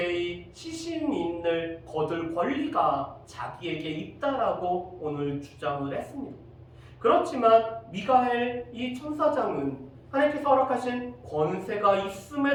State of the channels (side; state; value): both; identical; correlation 1.00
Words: 시신인을 거둘 권리가 자기에게 있다라고 오늘 주장을 했습니다. 그렇지만 미가엘 이 천사장은 하나님께서 허락하신 권세가